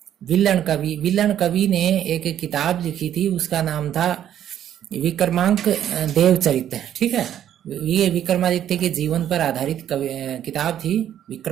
विल्लन कवि ने एक किताब लिखी थी, उसका नाम था विक्रमांक देवचरित, ठीक है। ये विक्रमादित्य के जीवन पर आधारित किताब थी,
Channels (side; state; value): left; quieter; 10.6 dB